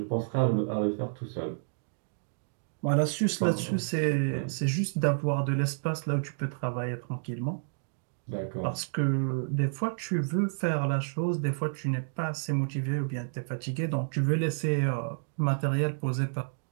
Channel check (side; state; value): left; silent; digital silence